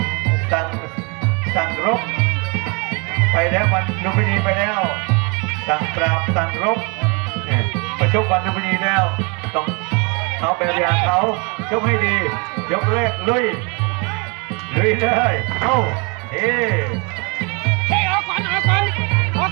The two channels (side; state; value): left; quieter; 31.4 dB